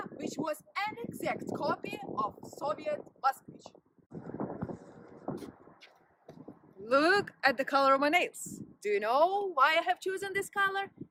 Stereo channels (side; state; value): both; identical; correlation 1.00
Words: which was an exact copy of Soviet Moskvich. Look at the color of my nails. Do you know why I have chosen this color?